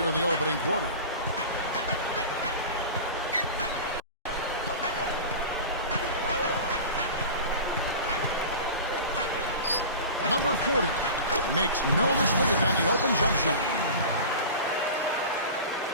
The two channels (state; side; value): inverted; both; correlation -0.33